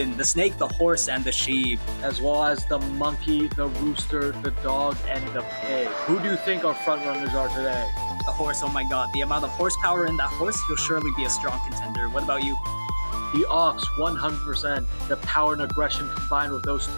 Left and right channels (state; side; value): inverted; both; correlation -1.00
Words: the snake, the horse, and the sheep. As well as the monkey, the rooster, the dog, and the pig. Who do you think our front runners are today? The horse, oh my god, the amount of horsepower in that horse, he'll surely be a strong contender. What about you? The ox, 100%. The power and aggression combined with those